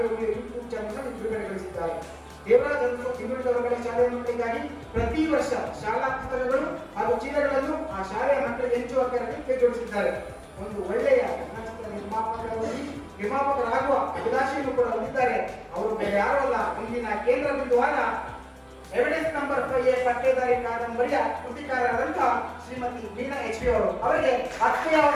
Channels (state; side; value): identical; both; correlation 1.00